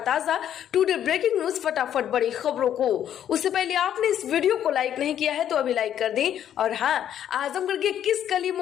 टुडे ब्रेकिंग न्यूज, फटाफट बड़ी खबरों को। उससे पहले आपने इस वीडियो को लाइक नहीं किया है तो अभी लाइक कर दें। और हाँ, आजमगढ़ के किस गली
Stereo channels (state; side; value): quieter; right; 10.2 dB